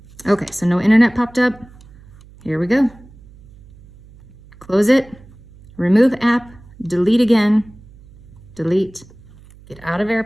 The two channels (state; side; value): noise; right; hum, 23 dB below the sound